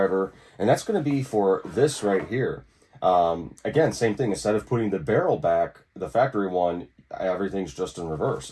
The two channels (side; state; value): both; identical; correlation 1.00